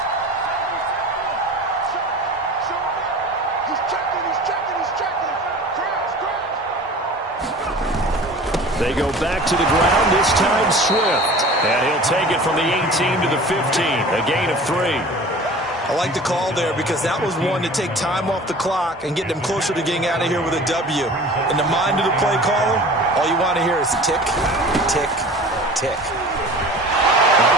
They go back to the ground, this time Swift. And he'll take it from the 18 to the 15, a gain of 3. I like the call there because that was one to take time off the clock and get them closer to getting out of here with a W. In the mind of the play caller, all you want to hear is tick, tick, tick.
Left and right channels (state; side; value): normal; both; correlation 0.41